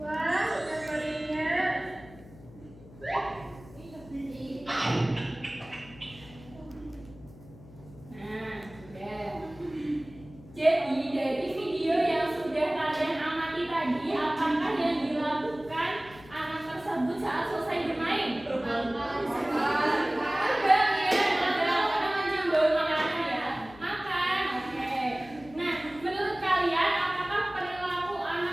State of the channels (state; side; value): noise; left; hum, 20 dB below the sound